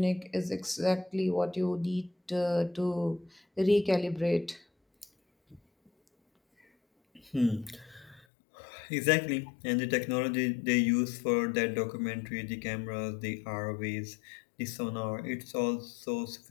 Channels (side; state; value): right; drops out; at 8.2 s